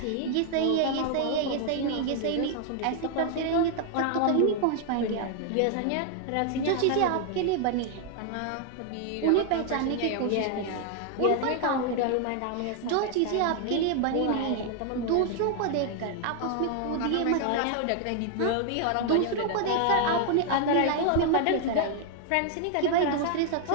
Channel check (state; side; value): different; both; correlation 0.00